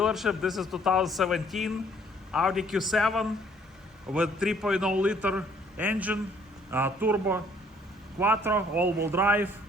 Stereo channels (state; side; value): normal; both; correlation 0.62